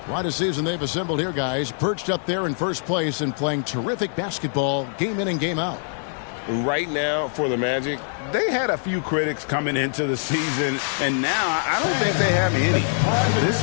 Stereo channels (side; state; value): right; silent; digital silence